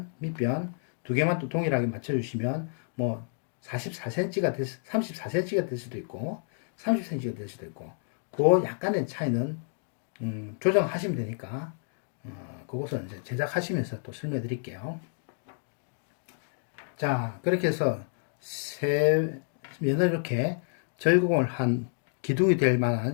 두 개만 또 동일하게 맞춰주시면 뭐 34cm가 될 수도 있고 30cm가 될 수도 있고, 그 약간의 차이는 조정하시면 되니까 그것은 이제 제작하시면서 또 설명해 드릴게요. 자, 그렇게 해서 세 면을 이렇게 절공을 한 기둥이 될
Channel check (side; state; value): right; silent; digital silence